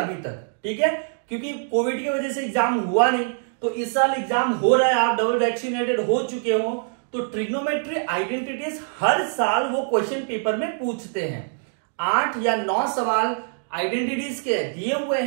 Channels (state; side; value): silent; left; digital silence